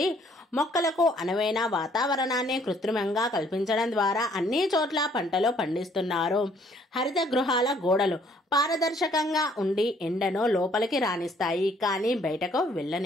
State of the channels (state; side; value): normal; both; correlation 0.63